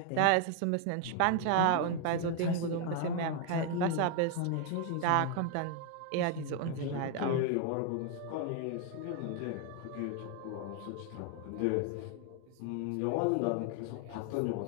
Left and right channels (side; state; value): both; different; correlation 0.01